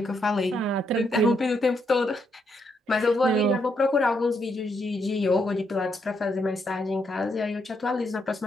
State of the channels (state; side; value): normal; both; correlation 0.77